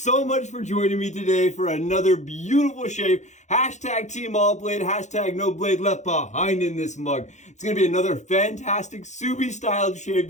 much for joining me today for another beautiful shave. Hashtag Team All Blade, hashtag no blade left behind in this mug. It's going to be another fantastic Subi styled shave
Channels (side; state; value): right; late; 0.34 ms